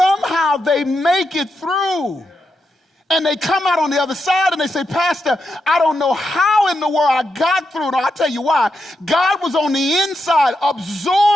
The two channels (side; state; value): both; normal; correlation 0.85